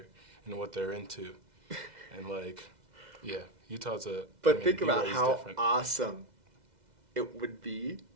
and what they're into. And like, yeah, Utah's a. But think about BYU's how different. awesome it would be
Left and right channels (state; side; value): late; left; 2.0 ms